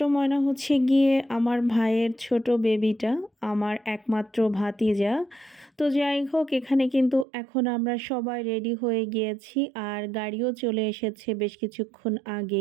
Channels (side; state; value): left; drops out; at 7.2 s